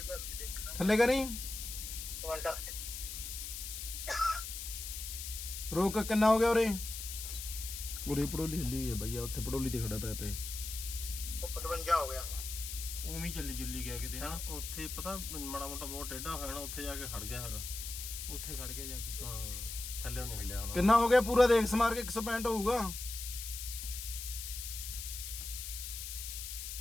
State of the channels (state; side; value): noise; left; hiss, 7 dB below the sound